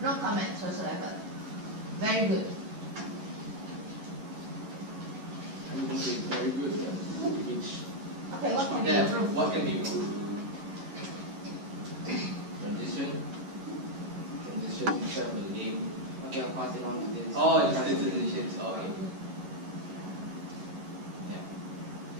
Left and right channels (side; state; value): left; late; 11 ms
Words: No comments whatsoever. Very good. I'm going to say very good. Which, Okay, what can be yeah, improved? what can be improved? Transition instead of the name. Okay, I'll pass it on to this. Oh, it's the transitions. Oh, okay.